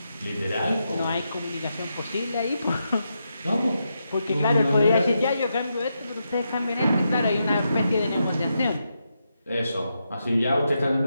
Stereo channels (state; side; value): inverted; both; correlation -0.84